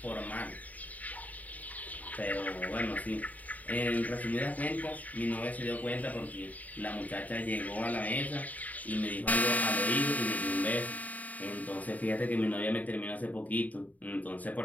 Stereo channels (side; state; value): right; late; 0.074 ms